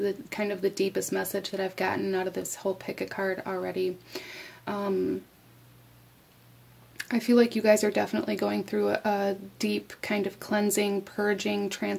kind of the deepest message that I've gotten out of this whole pick a card already. I feel like you guys are definitely going through a deep kind of cleansing, purging,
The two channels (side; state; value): both; identical; correlation 1.00